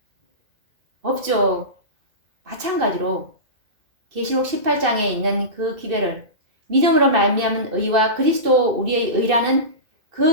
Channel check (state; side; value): late; left; 2.6 ms